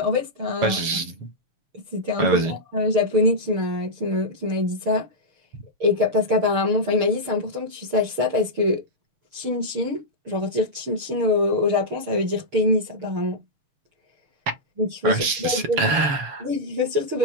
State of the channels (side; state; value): left; late; 7.1 ms